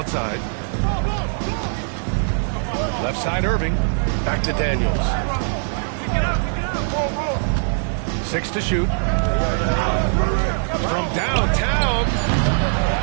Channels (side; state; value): left; silent; 63 dB below the other